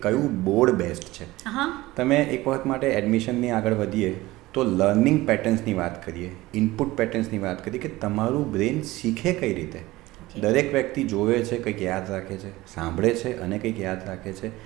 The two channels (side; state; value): left; quieter; 18.7 dB